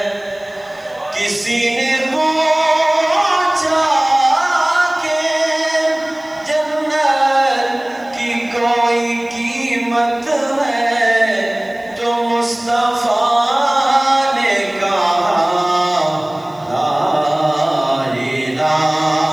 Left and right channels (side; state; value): left; noise; hiss, 30 dB below the sound